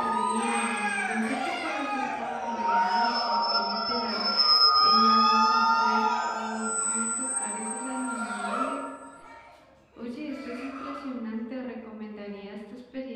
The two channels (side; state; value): both; identical; correlation 1.00